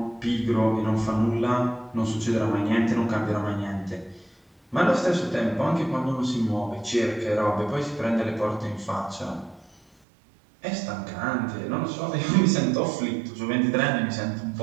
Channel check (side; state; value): left; drops out; at 9.9 s